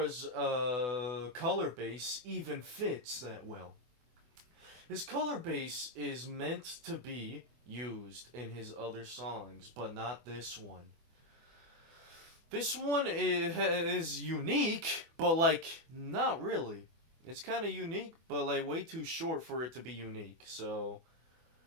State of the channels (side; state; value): left; late; 24 ms